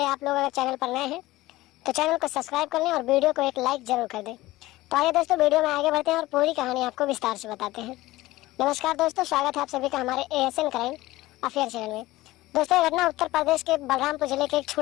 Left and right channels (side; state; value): right; quieter; 17.9 dB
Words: आप लोग अगर चैनल पर नए हैं तो चैनल को सब्सक्राइब कर लें और वीडियो को एक लाइक जरूर कर दें। तो आइए दोस्तों वीडियो में आगे बढ़ते हैं और पूरी कहानी आपको विस्तार से बताते हैं। नमस्कार दोस्तों, स्वागत है आप सभी का हमारे ASN क्राइम अफेयर चैनल में। दोस्तों ये घटना उत्तर प्रदेश के बलरामपुर जिले के एक